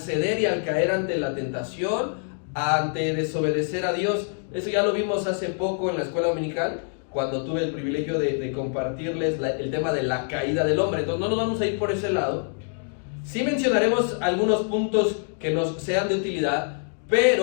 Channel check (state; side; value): silent; right; 62 dB below the other